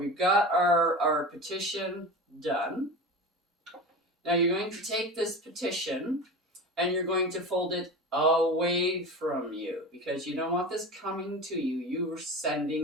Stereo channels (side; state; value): both; normal; correlation 0.30